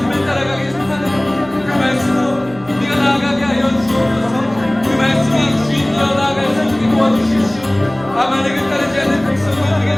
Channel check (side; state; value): right; noise; hum, 22 dB below the sound